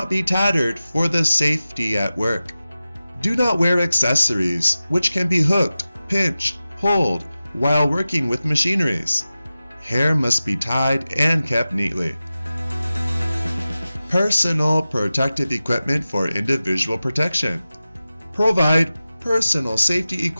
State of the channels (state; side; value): inverted; both; correlation -0.95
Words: be tattered for the safety at work. Do not wear accessories which can be hooked, pinched, pulled while working with machineries. Hair must be tied and kept neatly. Personal protective equipment for individual protection. Provide personal safety